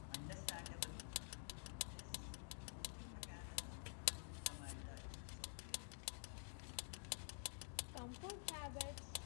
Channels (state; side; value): silent; right; digital silence